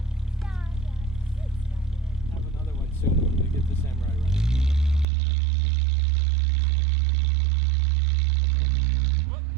have another one soon when we get the Samurai running. Whoop,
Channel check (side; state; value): left; drops out; at 5.1 s